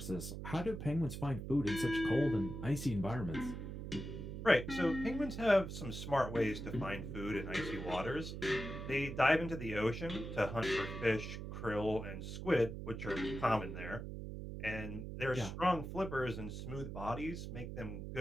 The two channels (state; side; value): noise; right; hum, 7 dB below the sound